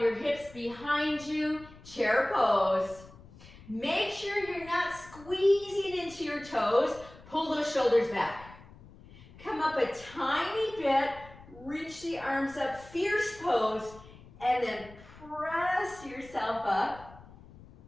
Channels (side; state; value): left; noise; rumble, 20 dB below the sound